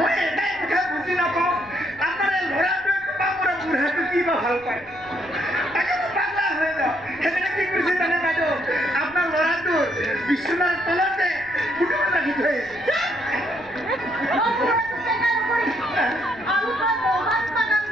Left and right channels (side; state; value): left; noise; rumble, 24 dB below the sound